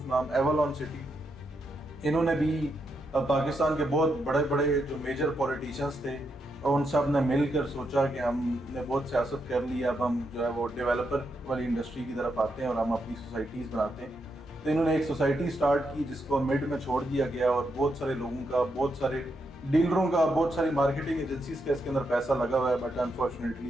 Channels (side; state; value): both; normal; correlation 0.82